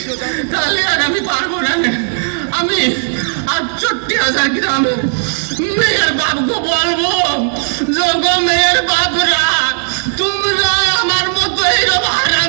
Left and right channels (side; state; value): left; silent; digital silence